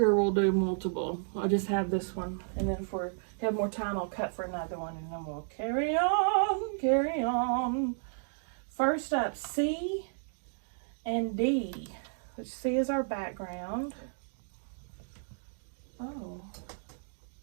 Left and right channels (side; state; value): left; silent; digital silence